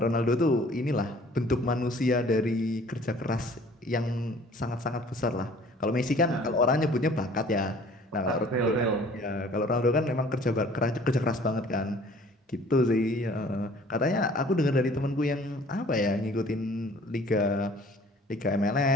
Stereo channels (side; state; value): both; normal; correlation 0.52